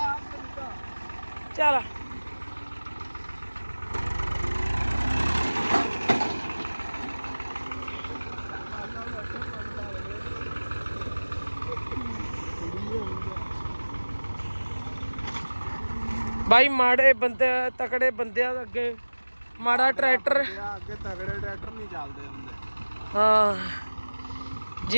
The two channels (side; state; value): both; inverted; correlation -1.00